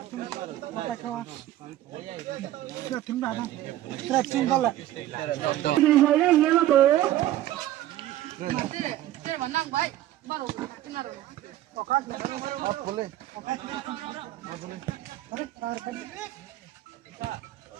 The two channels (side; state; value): left; quieter; 14.0 dB